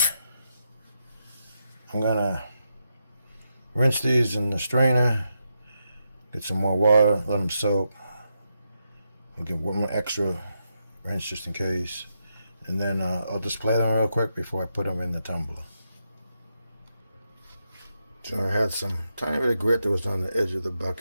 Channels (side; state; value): both; inverted; correlation -0.84